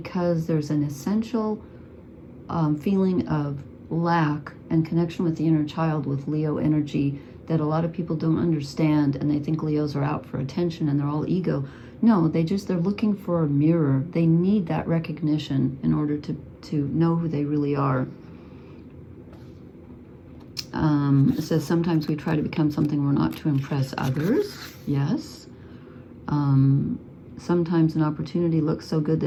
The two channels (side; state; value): both; identical; correlation 1.00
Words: there's an essential feeling of lack and connection with the inner child with Leo energy that a lot of people don't understand, and they think Leos are out for attention and they're all ego. No, they're looking for a mirror. They need that recognition in order to know who they really are. It says sometimes we try to become something we're not to impress others. Yes. Sometimes an opportunity looks so good